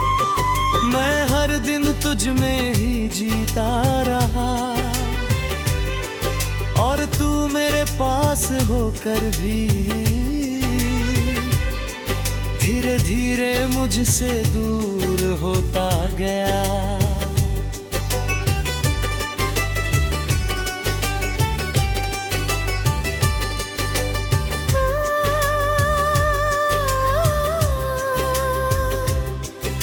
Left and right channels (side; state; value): both; identical; correlation 1.00